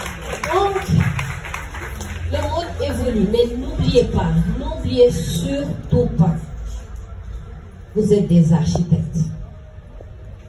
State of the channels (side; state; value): both; identical; correlation 1.00